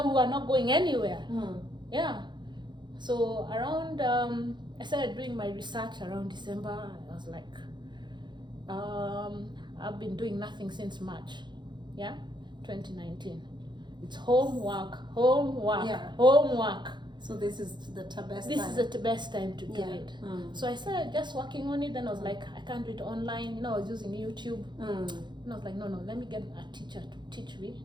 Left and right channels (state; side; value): late; left; 0.22 ms